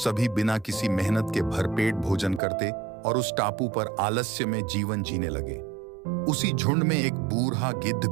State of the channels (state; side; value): drops out; left; at 2.4 s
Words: बिना किसी मेहनत के भरपेट भोजन करते और उस टापू पर आलस्य में जीवन जीने लगे। उसी झुंड में एक बूढ़ा गिद्ध